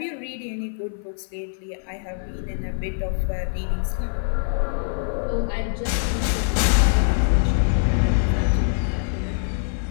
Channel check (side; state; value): right; silent; 56 dB below the other